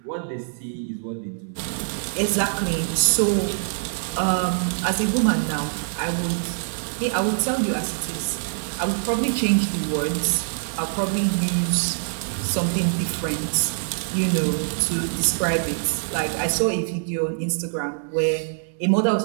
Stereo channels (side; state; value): left; silent; digital silence